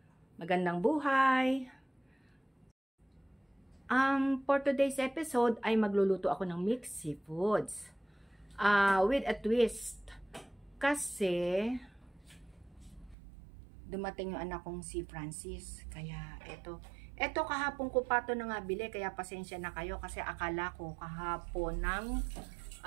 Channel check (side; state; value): left; drops out; at 13.2 s